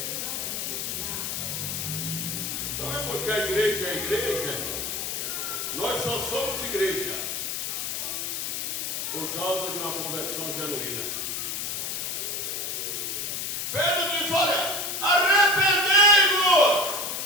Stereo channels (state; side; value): noise; left; hiss, 3 dB below the sound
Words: Sabe por que a igreja é igreja, irmão? Nós só somos igreja por causa de uma conversão genuína. Pedro diz: olha, arrependei-vos.